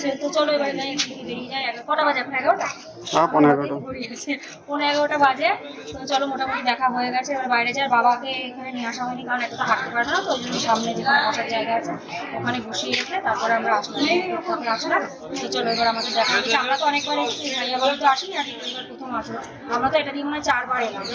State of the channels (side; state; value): both; identical; correlation 1.00